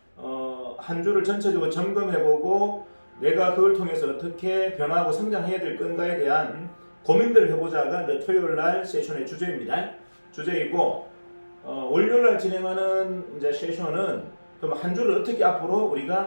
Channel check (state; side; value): inverted; both; correlation -1.00